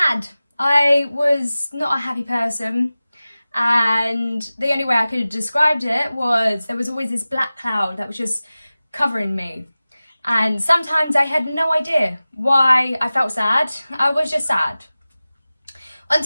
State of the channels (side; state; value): both; inverted; correlation -0.97